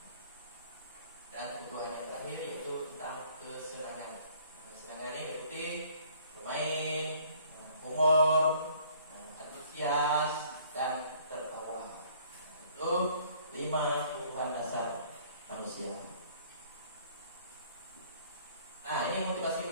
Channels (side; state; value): both; inverted; correlation -0.58